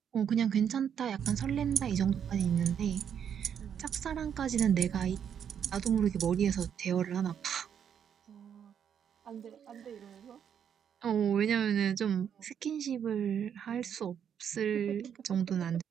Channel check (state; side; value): quieter; left; 8.3 dB